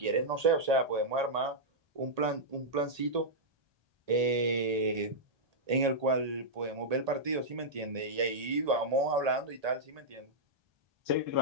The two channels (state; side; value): late; left; 1.8 ms